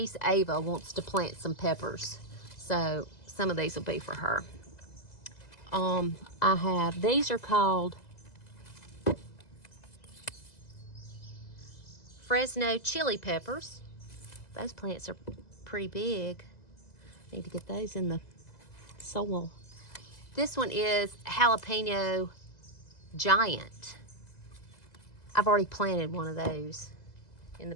Ava wants to plant some peppers, so some of these will be for her. I have, these are called Fresno chili peppers. Those plants are pretty big. Need to get those in the soil. This one is jalapeno giant. I've already planted one of those in the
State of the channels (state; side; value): late; right; 2.0 ms